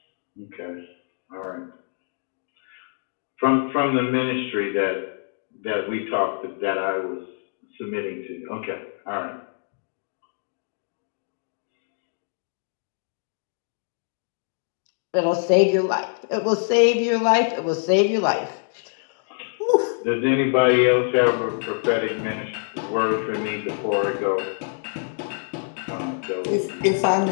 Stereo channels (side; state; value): right; silent; digital silence